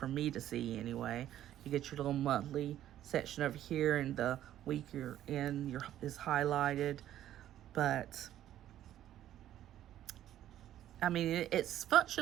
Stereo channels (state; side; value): quieter; left; 12.1 dB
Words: me to see anyway. You get your little monthly section over here, and the week you're in is highlighted. But I mean, it's